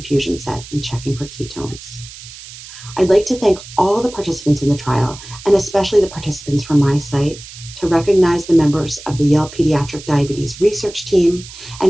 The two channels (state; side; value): noise; right; hiss, 16 dB below the sound